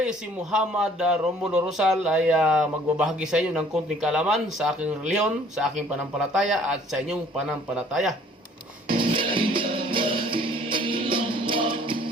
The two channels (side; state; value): both; normal; correlation 0.56